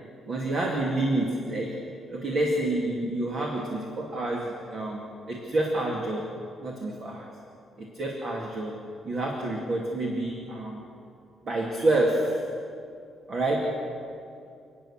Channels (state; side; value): normal; both; correlation 0.77